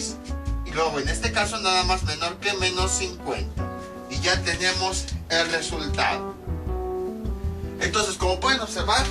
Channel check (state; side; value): identical; both; correlation 1.00